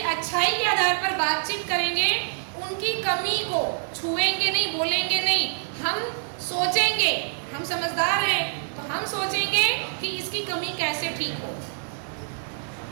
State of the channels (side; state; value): left; silent; 61 dB below the other